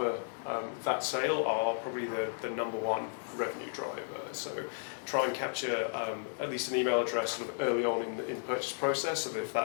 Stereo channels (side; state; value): right; silent; digital silence